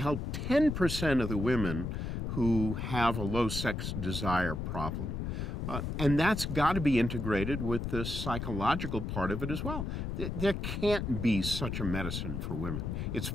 10% of the women who have a low sex desire problem. And that's got to be integrated with the psychological part of it as well. There can't be such a medicine for women. It's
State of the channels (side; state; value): left; noise; rumble, 3 dB below the sound